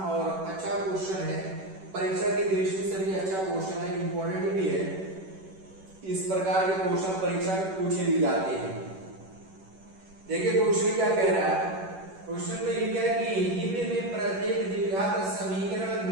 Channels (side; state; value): left; late; 11 ms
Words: और अच्छा क्वेश्चन है, परीक्षा की दृष्टि से भी अच्छा क्वेश्चन है, इंपॉर्टेंट भी है। इस प्रकार के क्वेश्चन परीक्षा में पूछे भी जाते हैं। देखिए क्वेश्चन क्या कह रहा है। क्वेश्चन में लिखा है कि निम्न में प्रत्येक द्विघात समीकरण